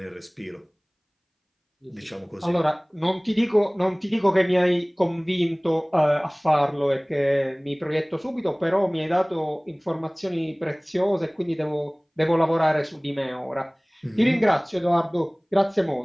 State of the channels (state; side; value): identical; both; correlation 1.00